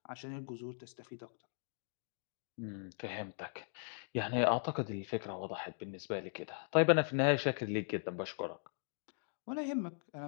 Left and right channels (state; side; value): silent; right; digital silence